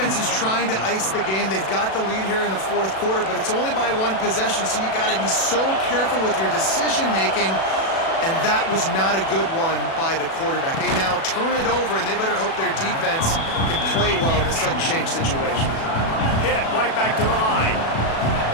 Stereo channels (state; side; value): late; right; 36 ms